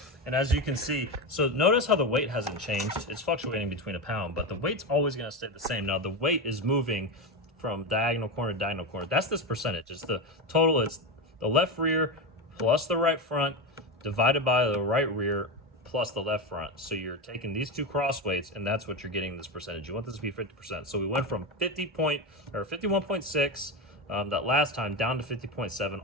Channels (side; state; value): both; normal; correlation 0.16